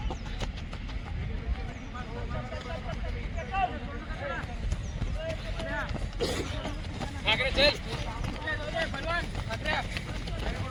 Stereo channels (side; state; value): both; identical; correlation 1.00